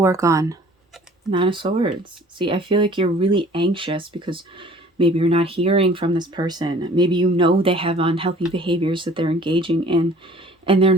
on, Nine of Swords. See, I feel like you're really anxious because maybe you're not hearing from this person. Maybe they have unhealthy behaviors that they're engaging in, and they're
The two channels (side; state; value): both; normal; correlation 0.51